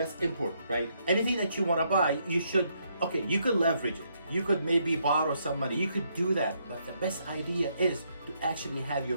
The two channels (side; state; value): both; inverted; correlation -0.74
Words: important, right? Anything that you want to buy, you should. Okay, you could leverage it. You could maybe borrow some money. You could do that. But the best idea is to actually have